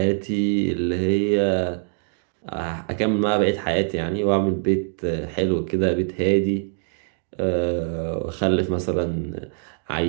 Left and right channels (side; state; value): left; silent; 63 dB below the other